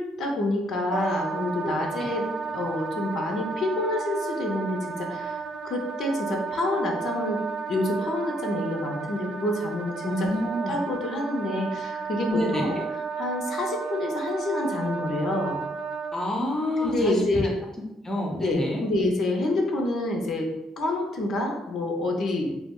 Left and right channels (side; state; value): both; normal; correlation 0.69